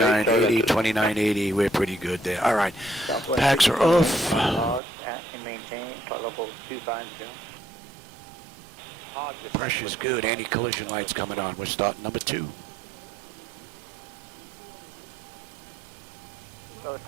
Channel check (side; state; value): left; drops out; at 4.8 s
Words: 2980, we're pretty good there. All right, packs are off. Maintain flight level 250. Pressure's good. Anti-collision lights coming on. We're starting number 2.